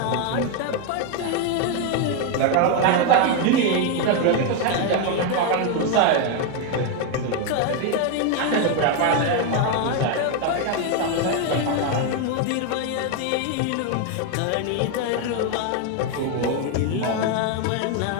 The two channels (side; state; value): both; different; correlation 0.01